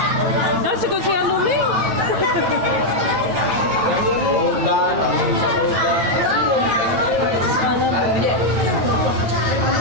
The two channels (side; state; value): left; late; 9.2 ms